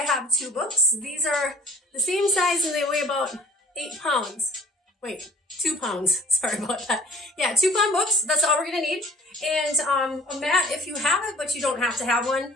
have 2 books. These are the same size and they weigh about 8 pounds. Wait, 2 pounds. Sorry about that. Yeah, 2 pound books. That's all we're going to need. And a mat if you have it, but you don't have to have one.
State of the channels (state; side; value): normal; both; correlation 0.49